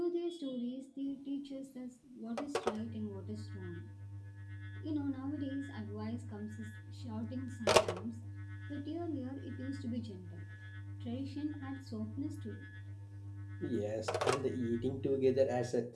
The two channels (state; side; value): identical; both; correlation 1.00